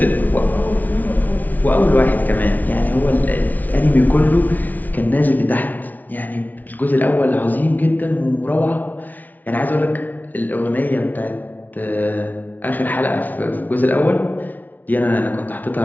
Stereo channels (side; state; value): right; late; 0.079 ms